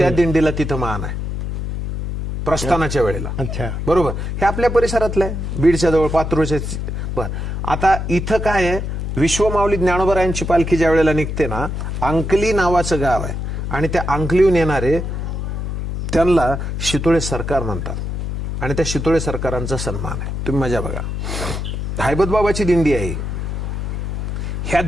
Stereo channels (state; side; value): noise; left; hum, 3 dB below the sound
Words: दिंडीला तिथं मान आहे. प्रस्थानाच्या वेळेला. अच्छा, बरोबर. हे आपल्या परिसरातलं आहे, बीडच्या जवळ, पात्रोच्या. बर, आता इथं काय आहे, विश्वमाऊली ज्ञानोबरायांची पालखी ज्या वेळेला निघते ना, अंकली नावाचं गाव आहे आणि त्या अंकलीहून येणारे त्यांना शितोळे सरकार म्हणतात आणि त्या शितोळे सरकारांचा सन्मान आहे. तुम्ही मजा बघा. हैबतबाबाची दिंडी आहे. ह्या